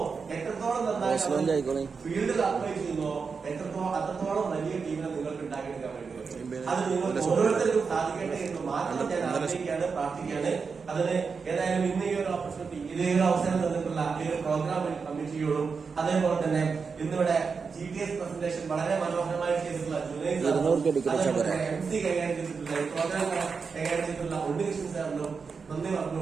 എത്രത്തോളം നന്നായി ഫീൽഡിൽ അപ്ലൈ ചെയ്യുന്നുവോ, അത്രത്തോളം വലിയ ടീമിനെ നിങ്ങൾക്ക് ഉണ്ടാക്കിയെടുക്കാൻ പറ്റും. അത് നിങ്ങൾക്ക് ഓരോരുത്തർക്കും സാധിക്കട്ടെ എന്ന് മാത്രം ഞാൻ ആഗ്രഹിക്കുകയാണ്, പ്രാർത്ഥിക്കുകയാണ്. അതിന് ഏതായാലും ഇന്ന് ഈ ഒരു ഓപ്പർച്യൂണിറ്റി, ഇതേ ഒരു അവസരം തന്നിട്ടുള്ള ഈ ഒരു പ്രോഗ്രാം കമ്മിറ്റിയോടും അതേപോലെ തന്നെ ഇന്നിവിടെ GTS പ്രസന്റേഷൻ വളരെ മനോഹരമായി ചെയ്തിട്ടുള്ള MC കൈകാര്യം ചെയ്തിട്ടുള്ള പ്രോഗ്രാം കൈകാര്യം ചെയ്തിട്ടുള്ള ഉണ്ണികൃഷ്ണൻ സാറിനും നന്ദി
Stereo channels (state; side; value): quieter; left; 5.3 dB